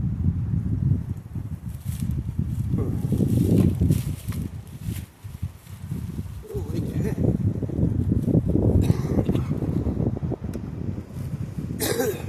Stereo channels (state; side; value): identical; both; correlation 1.00